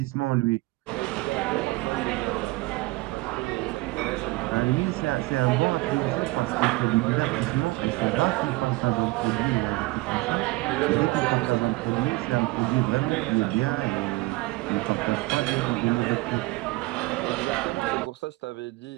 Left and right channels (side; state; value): left; quieter; 22.2 dB